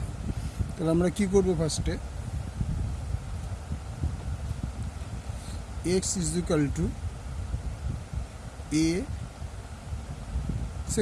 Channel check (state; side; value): identical; both; correlation 1.00